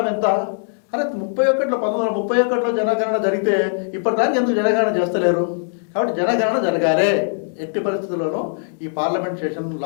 ఎంత? అరే 1931లో జనగణన జరిగితే ఇప్పటిదానికి ఎందుకు జనగణన చేస్తలేరు? కాబట్టి జనగణన జరగాలి. ఎట్టి పరిస్థితుల్లోనూ ఈ పార్లమెంట్ సెషన్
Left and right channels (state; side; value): silent; right; digital silence